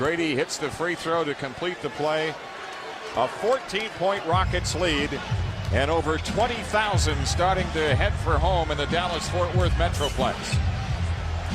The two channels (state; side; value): identical; both; correlation 1.00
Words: hits the free throw to complete the play. A 14-point Rockets lead, and over 20,000 starting to head for home in the Dallas-Fort Worth Metroplex.